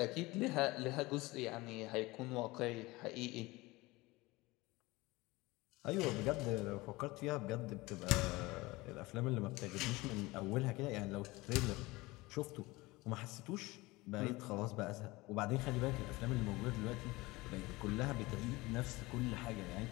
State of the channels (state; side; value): quieter; right; 21.4 dB